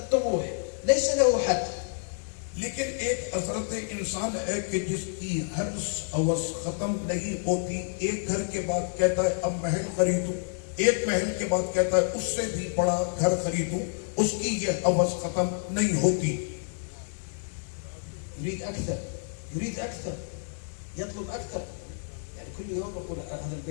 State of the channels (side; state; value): right; silent; digital silence